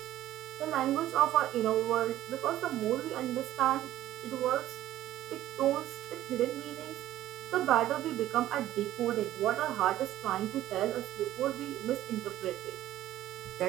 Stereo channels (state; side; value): quieter; left; 13.7 dB